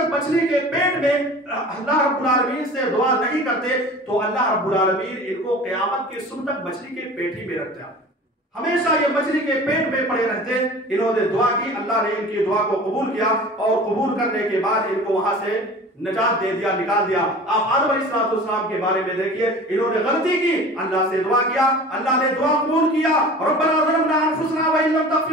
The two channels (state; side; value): normal; both; correlation 0.40